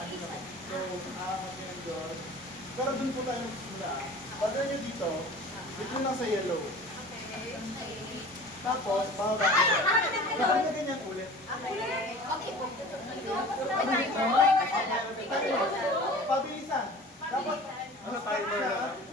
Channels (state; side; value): normal; both; correlation 0.41